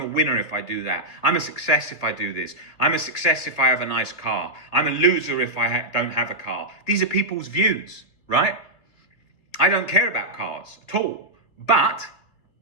winner if I do that. I'm a success if I do this. I'm a success if I have a nice car. I'm a loser if I don't have a car. These are people's views, right? I don't care about cars at all. But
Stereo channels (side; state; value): right; late; 2.9 ms